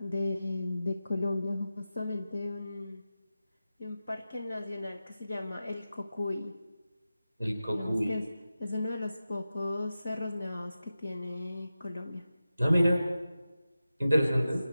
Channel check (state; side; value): inverted; both; correlation -0.93